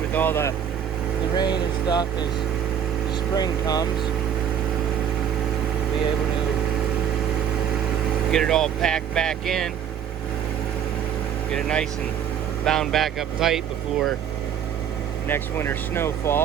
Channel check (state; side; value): quieter; left; 8.8 dB